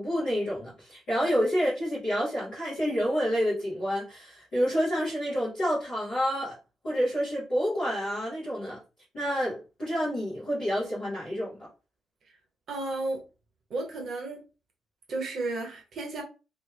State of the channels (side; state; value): both; normal; correlation 0.91